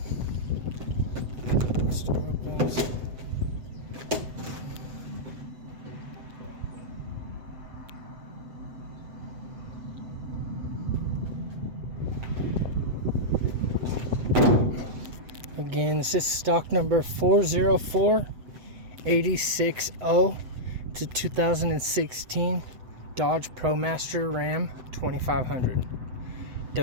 Store opens. Again, this is stock number 404-860. It's a 2016 Dodge ProMaster Ram 2500.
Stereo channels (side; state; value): left; late; 7.9 ms